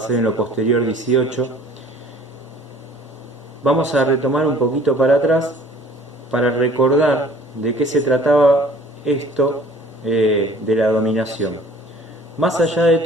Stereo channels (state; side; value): normal; both; correlation 0.51